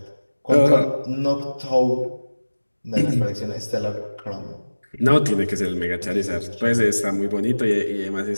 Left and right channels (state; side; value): inverted; both; correlation -1.00